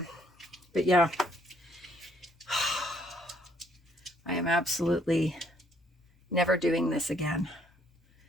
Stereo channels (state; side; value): normal; both; correlation 0.67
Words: But yeah, I am absolutely never doing this again.